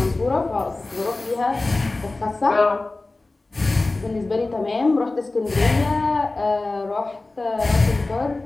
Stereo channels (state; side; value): quieter; right; 3.2 dB